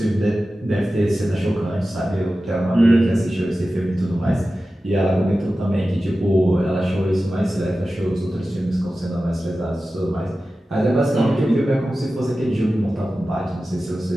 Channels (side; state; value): both; normal; correlation 0.94